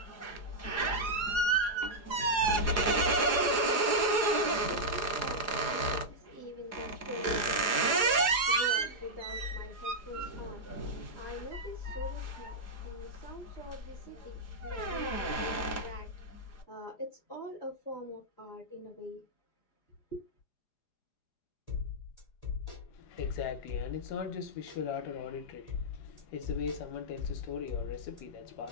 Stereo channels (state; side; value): late; right; 4.9 ms